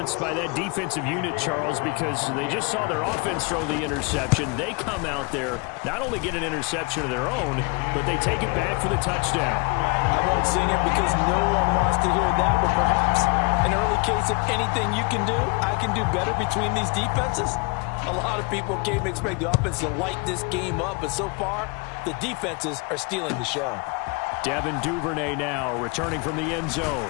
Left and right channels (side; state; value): right; quieter; 30.0 dB